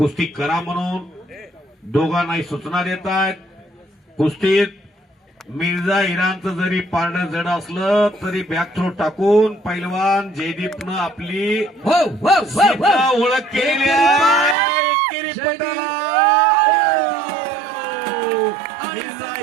करा म्हणून दोघांनाही सूचना देत आहेत. कुस्तीत मिर्झा इराणचं जरी पारडं जड असलं तरी बॅक थ्रो टाकून पैलवान जयदीपनं आपली हो हो हो सिद्ध हो ओळख केलेली आहे. एकेरी जयदीप. पटाला. मिर्झा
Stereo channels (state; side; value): drops out; left; at 14.6 s